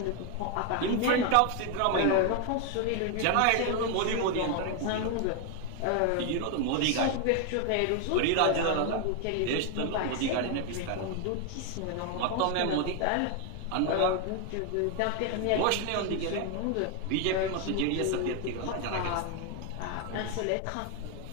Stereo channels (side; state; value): both; different; correlation 0.01